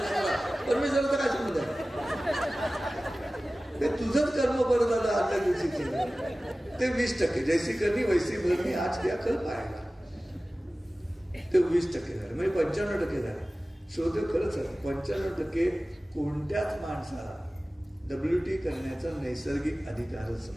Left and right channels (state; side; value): normal; both; correlation 0.97